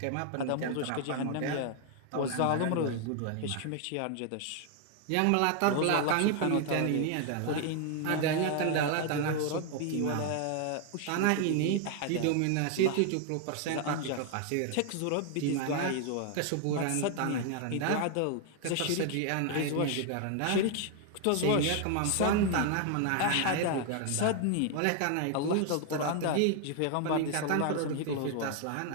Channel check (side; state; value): both; different; correlation 0.00